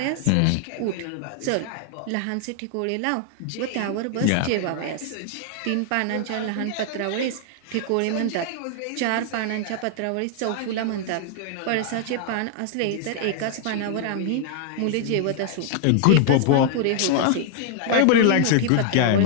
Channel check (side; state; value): both; different; correlation 0.00